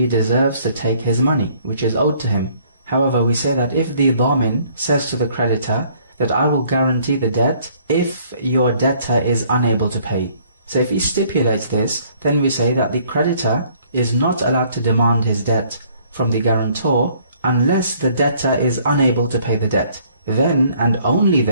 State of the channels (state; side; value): inverted; both; correlation -0.61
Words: deserves to take his money, which is owed to him. However, we say that if the dhamin says to the creditor that I will guarantee the debt if your debtor is unable to pay. So if he stipulates this, then we say that the creditor is not allowed to demand his debt from the guarantor unless the debtor is unable to pay the debt. Then and only